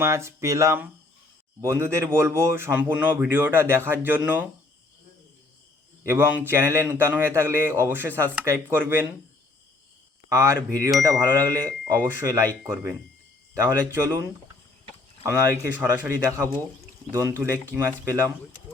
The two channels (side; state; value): right; quieter; 3.1 dB